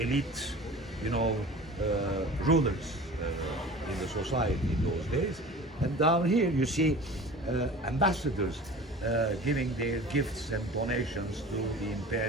rulers in the society in those days. And down here you see ambassadors giving their gifts and donations to the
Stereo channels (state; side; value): normal; both; correlation 0.40